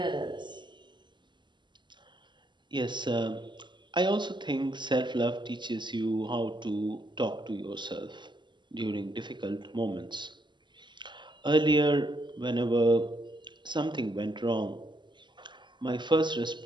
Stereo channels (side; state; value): left; late; 0.22 ms